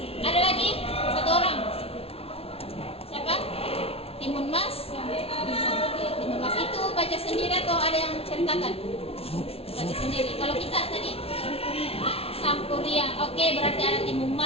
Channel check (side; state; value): right; late; 0.28 ms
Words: Ada lagi? Satu orang. Siapa? Timun Mas. Timun Mas itu baca sendiri atau ada yang ceritakan? Baca sendiri. Kalau kita tadi Sampuriang. Oke, berarti ada Timun